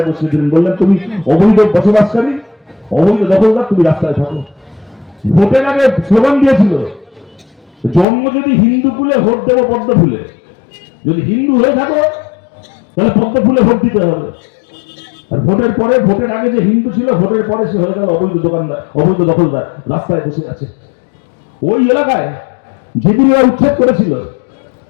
বসিয়ে দিলেন। বললেন তুমি অবৈধ বসবাসকারী, অবৈধ দখলদার, তুমি রাস্তায় থাকো। ভোটের আগে স্লোগান দিয়েছিল, জন্ম যদি হিন্দু কুলে ভোট দেবো পদ্ম ফুলে, যদি হিন্দু হয়ে থাকো তাহলে পদ্ম ফুলে ভোট দিতে হবে। আর ভোটের পরে, ভোটের আগে যে হিন্দু ছিল, ভোটের পরে সে হয়ে গেল অবৈধ দোকানদার, অবৈধ দখলদার, রাস্তায় বসে আছে। ওই এলাকায় যেদিন ওরা উচ্ছেদ করেছিল,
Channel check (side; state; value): right; drops out; at 8.1 s